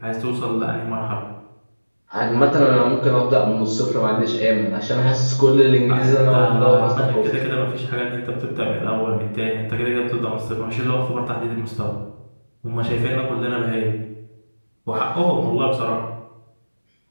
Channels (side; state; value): both; inverted; correlation -1.00